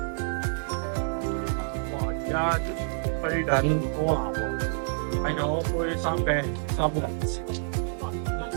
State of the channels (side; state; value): left; silent; digital silence